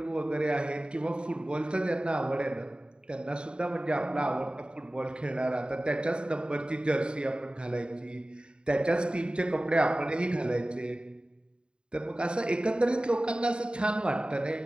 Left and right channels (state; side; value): late; left; 0.051 ms